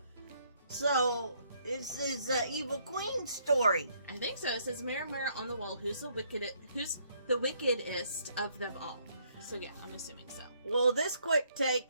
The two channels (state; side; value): inverted; both; correlation -0.68